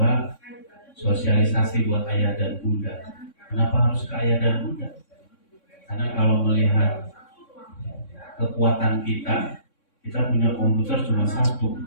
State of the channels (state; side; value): late; right; 3.6 ms